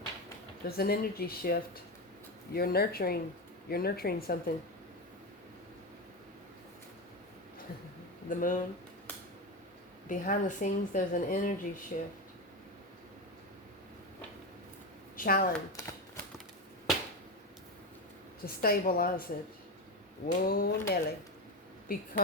There's an energy shift. You're nurturing something. The moon. Behind the scenes, there's an energy shift. Challenge. To stabilize it. Whoa, Nelly. Be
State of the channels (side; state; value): both; normal; correlation 0.16